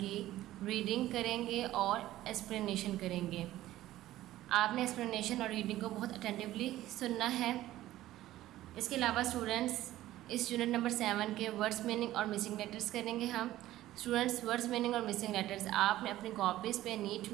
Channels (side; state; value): left; quieter; 14.9 dB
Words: reading करेंगे और explanation करेंगे। आपने explanation और रीडिंग को बहुत अटेंटिवली सुनना है। इसके अलावा स्टूडेंट्स इस यूनिट नंबर 7 के वर्ड्स मीनिंग और मिसिंग लेटर्स करेंगे हम। स्टूडेंट्स, वर्ड्स मीनिंग और मिसिंग लेटर्स आपने अपनी कॉपीज़ पे नीट